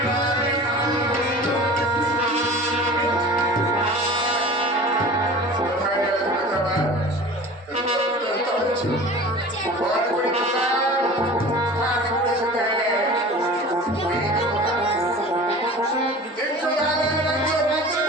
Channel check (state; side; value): normal; both; correlation 0.39